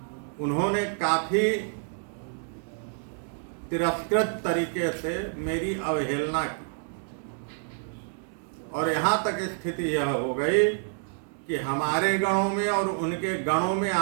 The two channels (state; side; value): silent; left; digital silence